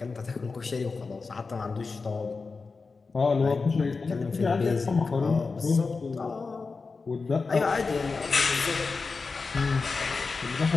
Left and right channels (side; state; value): right; quieter; 4.4 dB